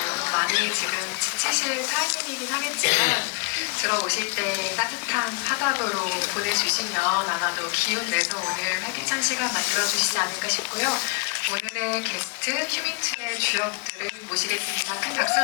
많이 지금 지치실 타이밍이긴 하겠지만 들어오실 때 따뜻한 화답으로 보내주시면 아마도 기운 내서 오늘 활기찬 시간 만들어주시지 않을까 싶고요. 오늘의 게스트 휴민트의 주역들을 모시겠습니다. 큰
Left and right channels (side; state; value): right; quieter; 28.5 dB